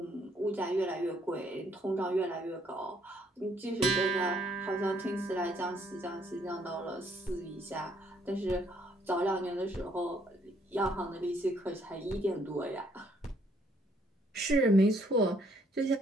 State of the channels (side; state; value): both; normal; correlation 0.67